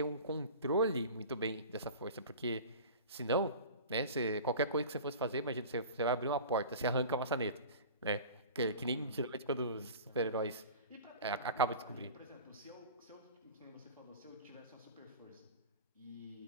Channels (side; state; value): both; inverted; correlation -0.38